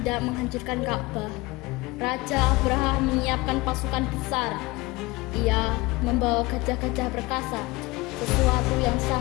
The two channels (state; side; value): quieter; right; 22.5 dB